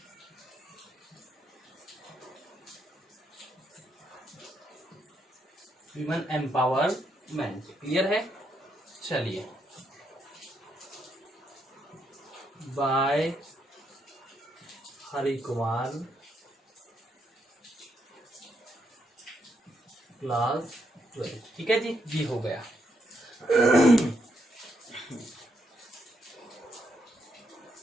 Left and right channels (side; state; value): both; normal; correlation 0.78